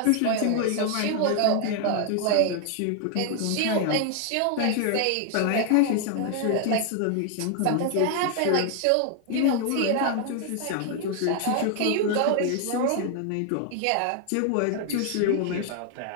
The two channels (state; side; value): different; both; correlation 0.00